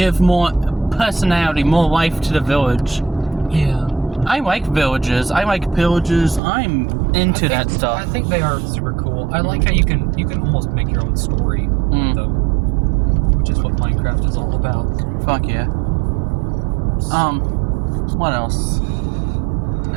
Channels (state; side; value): drops out; left; at 6.4 s